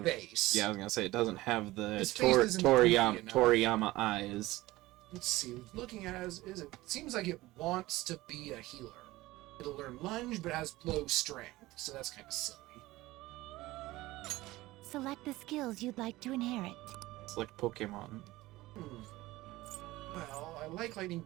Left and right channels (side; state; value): left; quieter; 18.5 dB